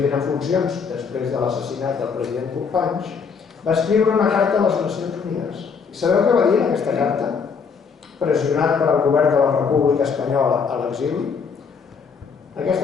en funcions després de l'assassinat del president Companys, va escriure una carta a les Nacions Unides. I sabeu què va dir en aquesta carta? Pressionat per al govern de la República Espanyola a l'exili,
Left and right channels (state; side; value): quieter; right; 5.8 dB